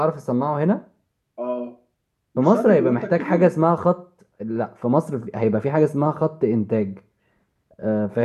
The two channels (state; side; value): identical; both; correlation 1.00